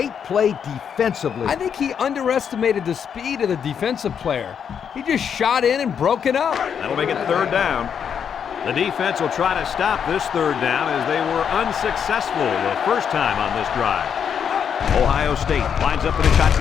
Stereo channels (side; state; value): right; quieter; 7.6 dB